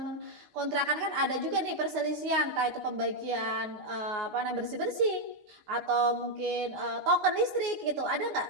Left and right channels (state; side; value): late; left; 19 ms